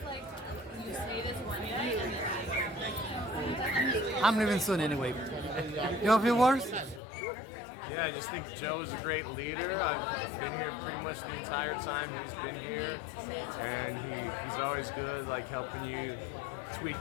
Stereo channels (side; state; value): right; drops out; at 7.0 s